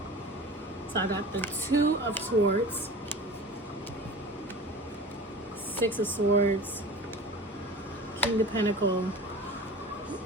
So I got the Two of Swords, Six of Swords, King of Pentacle,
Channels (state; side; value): normal; both; correlation 0.37